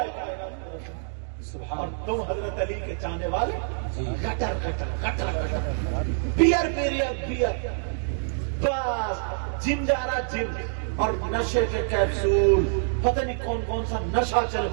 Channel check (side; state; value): left; silent; digital silence